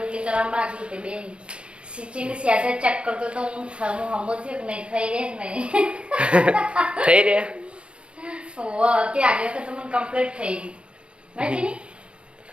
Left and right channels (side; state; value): left; late; 0.057 ms